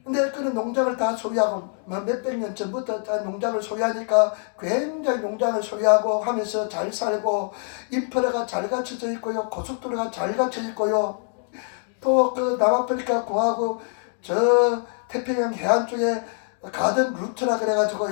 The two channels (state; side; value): silent; right; 56 dB below the other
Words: 근데 그런 농장을 다 소유하고 몇백 년 전부터 다 농장을 소유하니까 굉장히 농장을 소유하고 하면서 잘 살고 인프라가 잘 갖춰져 있고요. 고속도로가 잘 갖춰져 있고요. 또 그 남아프리카 공화국 저 태평양 해안 쪽에 가든 루트라